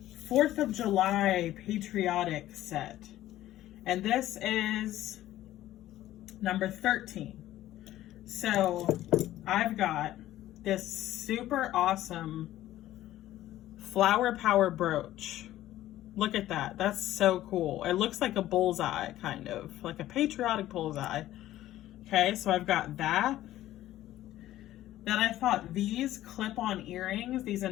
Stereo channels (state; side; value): quieter; right; 14.2 dB